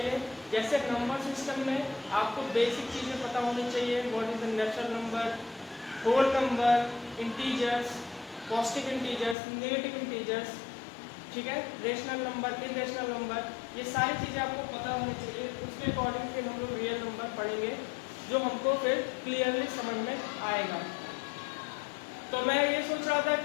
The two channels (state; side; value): drops out; right; at 9.3 s